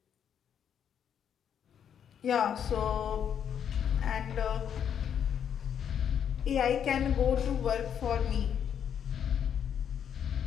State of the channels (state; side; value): quieter; right; 8.5 dB